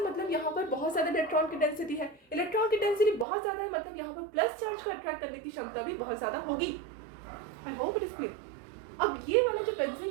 मतलब यहाँ पर बहुत ज़्यादा इलेक्ट्रॉन की डेंसिटी है, इलेक्ट्रॉन की डेंसिटी बहुत ज़्यादा है मतलब यहाँ पर प्लस चार्ज को अट्रैक्ट करने की क्षमता भी बहुत ज़्यादा होगी। आई होप इट इज क्लियर। अब ये वाला जो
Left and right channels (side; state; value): left; drops out; at 3.2 s